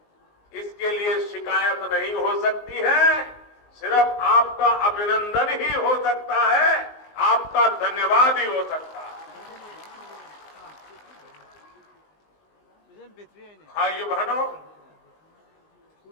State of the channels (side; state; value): right; late; 19 ms